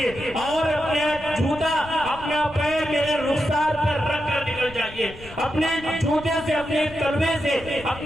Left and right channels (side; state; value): left; noise; rumble, 17 dB below the sound